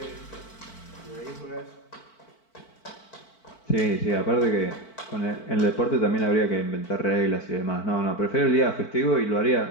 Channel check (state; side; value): late; right; 4.5 ms